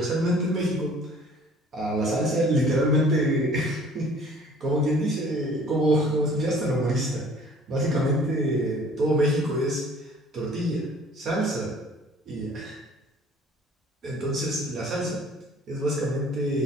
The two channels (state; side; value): normal; both; correlation 0.52